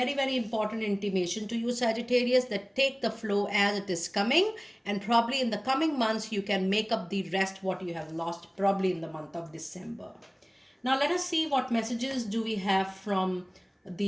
very important intimation to you, Sagittarius, that take the flow as it is coming, and probably in the coming months you can make up the rest what you have lost probably in the month of December. Now let us see what messages do we have from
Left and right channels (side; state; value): both; identical; correlation 1.00